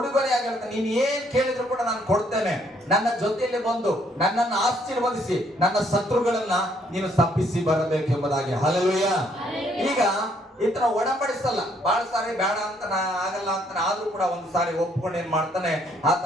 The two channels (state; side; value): normal; both; correlation 0.68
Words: ಹೇಳ್ತಾನೆ, ನೀನು ಏನ್ ಕೇಳಿದ್ರು ಕೂಡ ನಾನು ಕೊಡ್ತೇನೆ, ನನ್ನ ಜೊತೆಯಲ್ಲಿ ಬಂದು ನನ್ನನ್ನು ಆಶೀರ್ವದಿಸಿ ನನ್ನ ಶತ್ರುಗಳನ್ನ ನೀನು ಶಪಿಸಿ ಬರಬೇಕು ಎಂಬುದಾಗಿ. ಹಲ್ಲೆಲೂಯಾ. ಈಗ ಈತನ ಒಡಂಬಡಿಸಲ್ಲ, ಬಹಳ ಸಾರಿ ಬೇಡ ಅಂತ ಆಗಲ್ಲ ಅಂತ, ಆದ್ರೂ ಕೂಡ ಒಂದು ಸಾರಿ ಒಪ್ಕೊಂಡು ಏನ್ ಮಾಡ್ತಾನೆ,